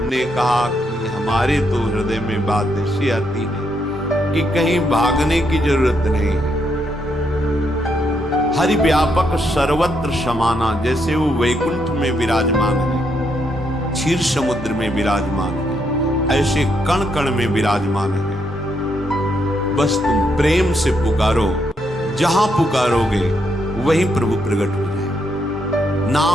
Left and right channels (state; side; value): normal; both; correlation 0.77